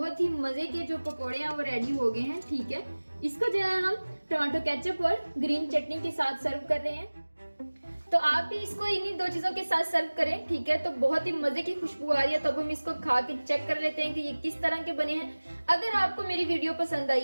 ही मजे के जो पकोड़े हैं वो रेडी हो गए हैं। ठीक है, इसको जो है हम टमाटो केचप और ग्रीन चटनी के साथ सर्व कर रहे हैं। तो आप भी इसको इन्हीं दो चीजों के साथ सर्व करें। ठीक है, तो बहुत ही मजे की खुशबू आ रही है। तो अब हम इसको खा के चेक कर लेते हैं कि ये किस तरह के बने हैं। अगर आपको मेरी वीडियो पसंद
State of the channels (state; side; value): inverted; both; correlation -1.00